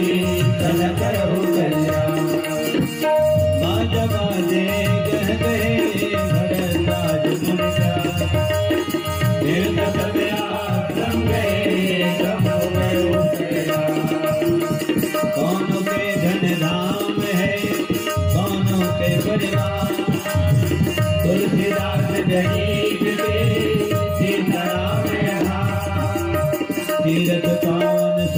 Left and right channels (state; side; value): identical; both; correlation 1.00